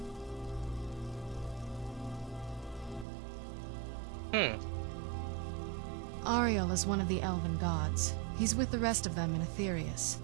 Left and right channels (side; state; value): left; drops out; at 3.1 s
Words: Ariel is one of the elven gods. He's with the rest of them in Aetherius.